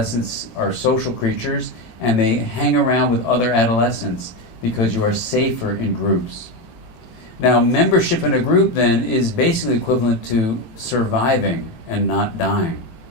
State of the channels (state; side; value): late; right; 18 ms